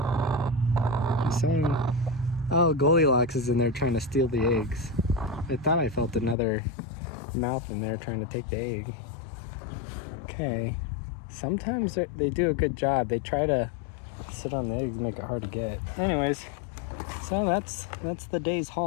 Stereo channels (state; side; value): drops out; right; at 6.4 s